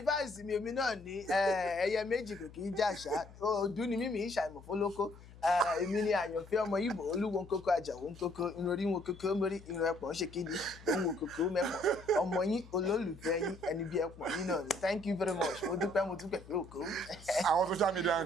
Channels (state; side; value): noise; left; hum, 19 dB below the sound